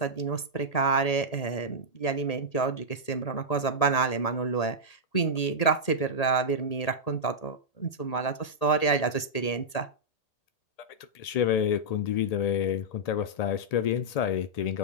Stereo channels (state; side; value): late; right; 1.8 ms